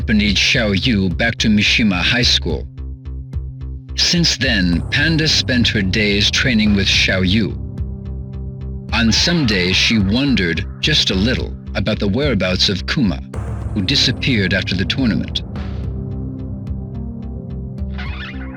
Xiaoyu back to Mishima High School. Since then, Panda spent her days training with Xiaoyu. On some days, she wondered just a little about the whereabouts of Kuma, who disappeared after the tournament.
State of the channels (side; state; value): both; identical; correlation 1.00